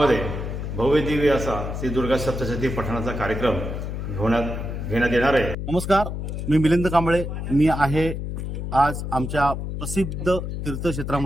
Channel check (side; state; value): left; noise; hum, 5 dB below the sound